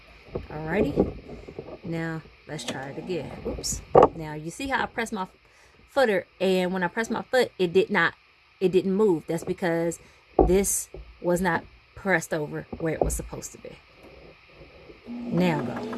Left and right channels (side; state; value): both; identical; correlation 1.00